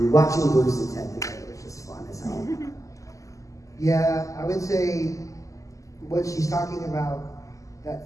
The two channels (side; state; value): right; late; 0.16 ms